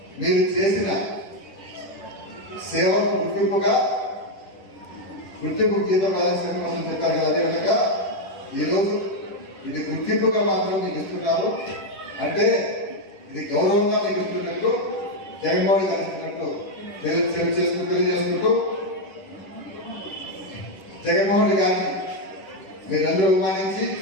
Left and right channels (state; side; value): late; right; 10 ms